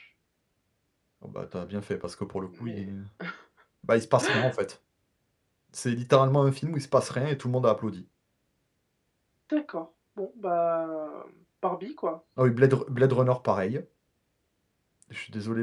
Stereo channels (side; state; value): both; identical; correlation 1.00